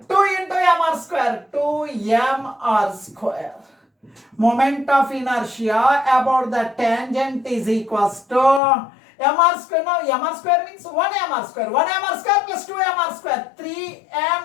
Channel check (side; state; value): right; drops out; at 8.6 s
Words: 2 into m square. 2m square. Moment of inertia about the tangent is equals to m square. Now m square means 1 m square. 1 m square plus 2 m square.